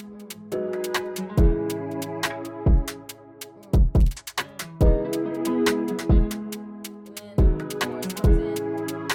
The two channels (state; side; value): identical; both; correlation 1.00